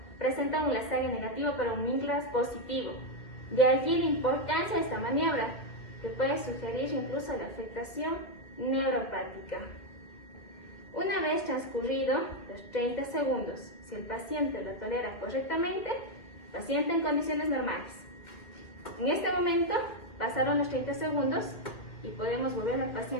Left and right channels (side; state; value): right; late; 2.4 ms